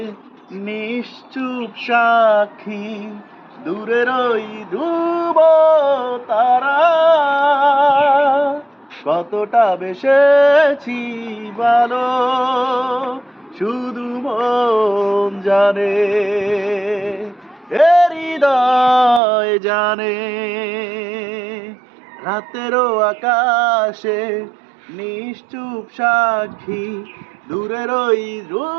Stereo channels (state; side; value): drops out; left; at 19.2 s